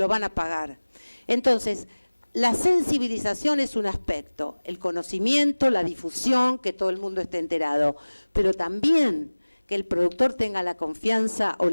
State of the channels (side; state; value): both; inverted; correlation -1.00